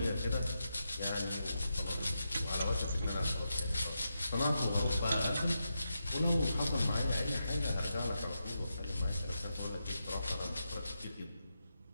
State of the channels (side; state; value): both; inverted; correlation -0.86